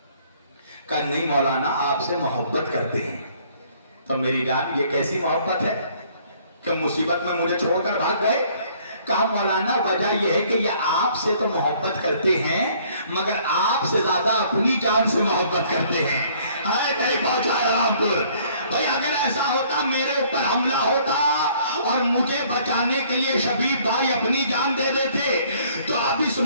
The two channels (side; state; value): both; inverted; correlation -0.60